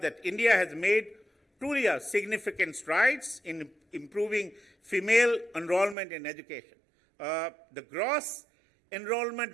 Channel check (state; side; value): drops out; left; at 6.0 s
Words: India has made truly significant strides in improving female enrollment in education. The gross enrollment